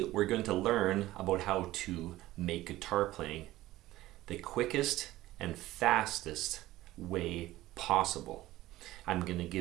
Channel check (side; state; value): left; quieter; 16.4 dB